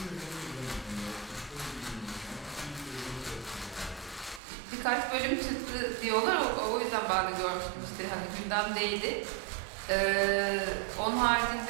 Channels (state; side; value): drops out; left; at 4.4 s